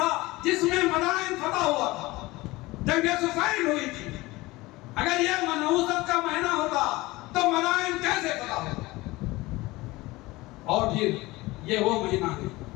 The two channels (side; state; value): right; quieter; 20.5 dB